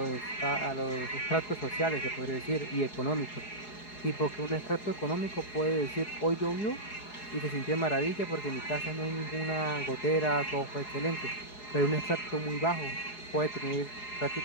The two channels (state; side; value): late; right; 4.8 ms